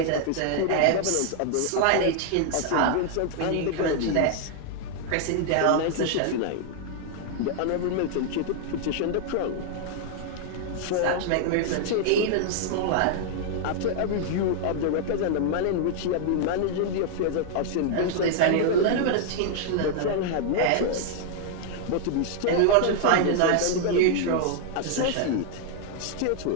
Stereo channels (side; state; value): both; different; correlation 0.00